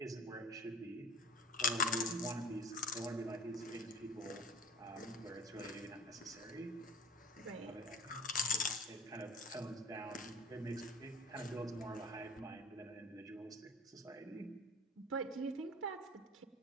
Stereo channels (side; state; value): both; normal; correlation 0.41